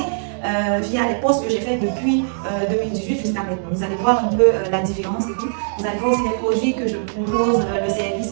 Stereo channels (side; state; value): left; silent; digital silence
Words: via les posts que j'ai fait depuis 2018 jusqu'à maintenant. Vous allez voir un peu la différence et tout. Vous allez voir aussi les produits que je propose, le service